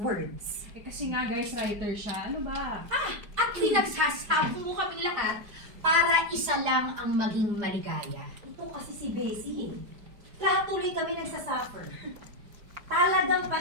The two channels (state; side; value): late; left; 4.9 ms